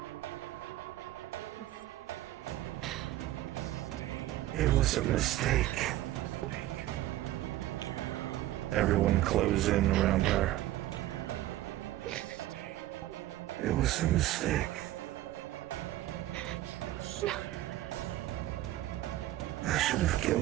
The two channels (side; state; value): left; quieter; 14.9 dB